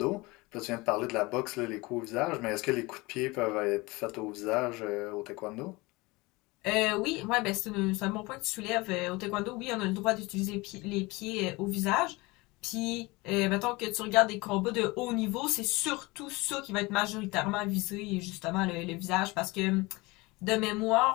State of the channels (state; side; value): quieter; right; 23.3 dB